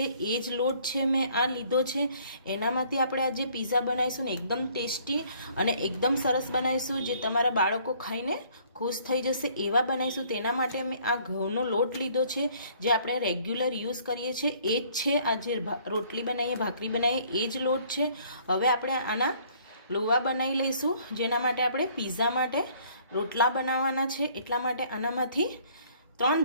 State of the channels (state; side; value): inverted; both; correlation -0.59